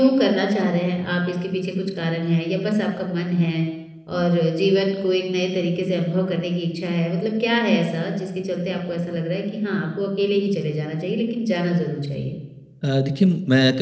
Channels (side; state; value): both; identical; correlation 1.00